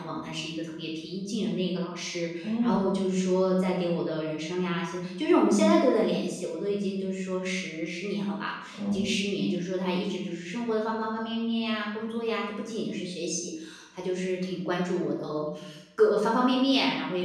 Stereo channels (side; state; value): both; identical; correlation 1.00